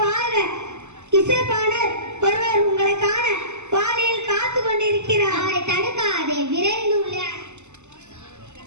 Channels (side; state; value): left; late; 0.83 ms